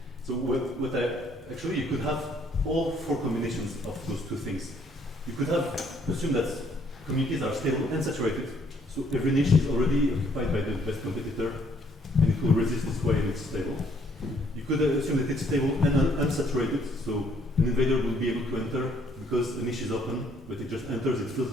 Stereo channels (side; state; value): both; normal; correlation 0.65